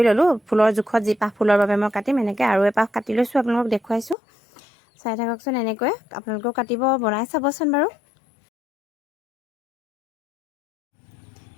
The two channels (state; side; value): drops out; right; at 4.2 s